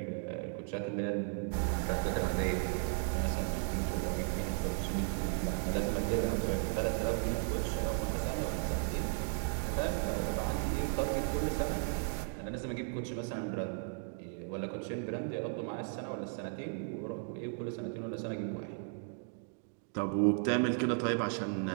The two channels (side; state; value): left; silent; 54 dB below the other